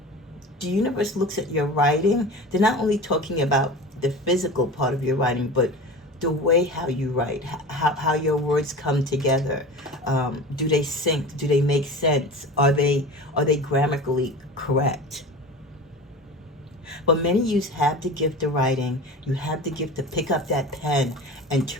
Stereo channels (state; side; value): normal; both; correlation 0.33